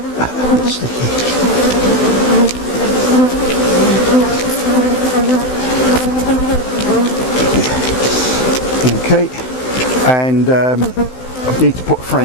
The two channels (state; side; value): late; right; 16 ms